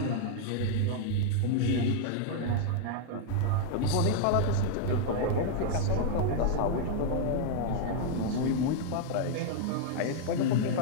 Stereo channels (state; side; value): different; both; correlation 0.00